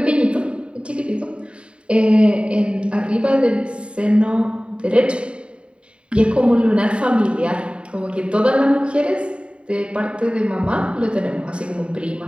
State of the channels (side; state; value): left; late; 0.056 ms